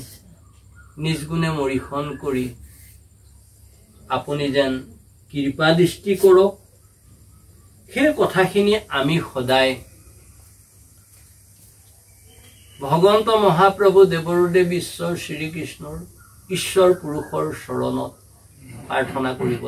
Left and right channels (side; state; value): both; identical; correlation 1.00